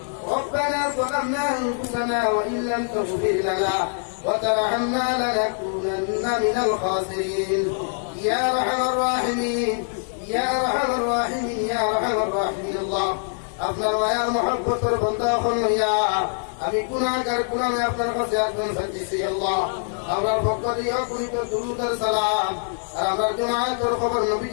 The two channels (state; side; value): silent; right; digital silence